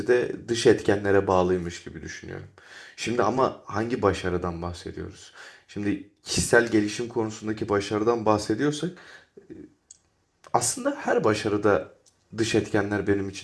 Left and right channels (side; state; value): both; identical; correlation 1.00